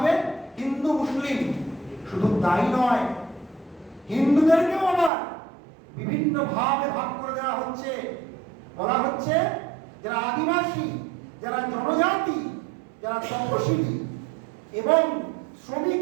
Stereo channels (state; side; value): drops out; left; at 5.1 s